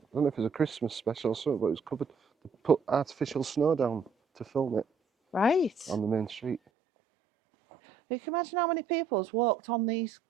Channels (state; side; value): drops out; left; at 6.6 s